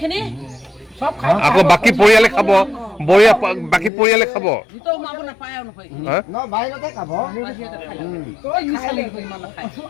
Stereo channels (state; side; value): drops out; right; at 3.9 s